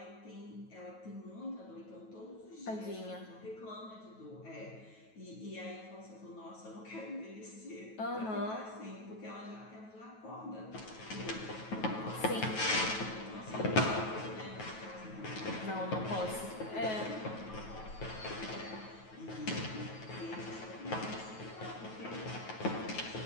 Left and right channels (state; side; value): late; right; 9.3 ms